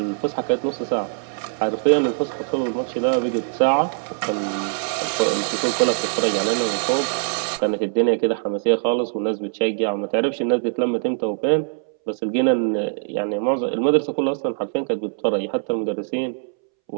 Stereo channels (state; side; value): silent; left; 64 dB below the other